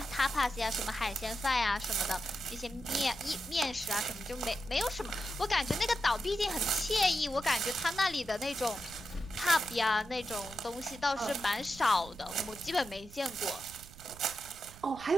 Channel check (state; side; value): noise; right; rumble, 18 dB below the sound